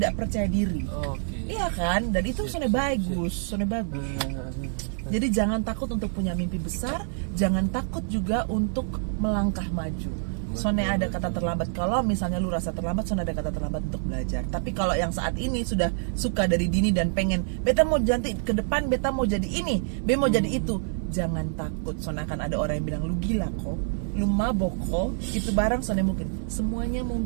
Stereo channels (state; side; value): silent; left; 60 dB below the other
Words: percaya diri. Oke. Iya kan? Dan itu soalnya bagus. Jadi jangan takut untuk punya mimpi besar, jangan takut juga untuk melangkah maju. Soalnya ada kata terlambat. Kalau misalnya lu rasa terlambat, soalnya ada kata terlambat untuk belajar. Tapi kalau yang saat ini sudah suka dari dini dan pengen, beta mau janti ke depan, beta mau jadi ini, beta mau jadi itu, jangan takut. Soalnya akan ada orang yang bilang lu gila kok, lu mabok kok, itu barang soalnya mungkin. Semuanya